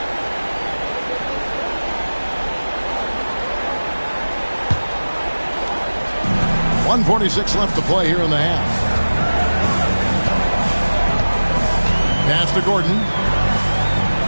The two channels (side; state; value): both; inverted; correlation -1.00